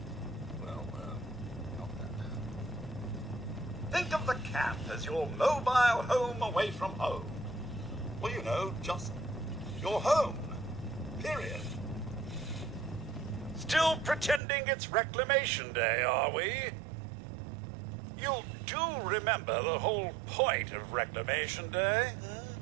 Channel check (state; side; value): drops out; left; at 14.4 s